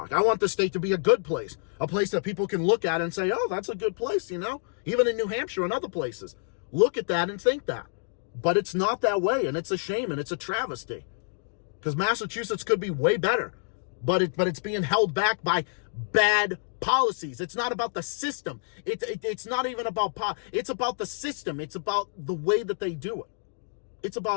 I want the state to be a good place. A place that people can look at and say, oh, that's a good place, Even in New Hampshire and other places. Look at that and think that. But it's not that way, and it's a shame, and it's a travesty. Because Massachusetts could be way better, but it's being held back by bad policies. It's not about the system. It's not even about it's about the system. It's about the way that they do it. It's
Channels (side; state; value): right; silent; digital silence